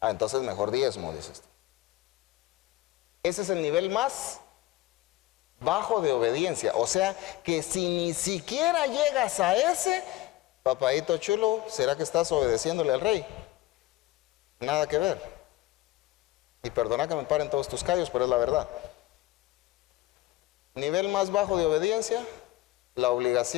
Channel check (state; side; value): quieter; right; 16.8 dB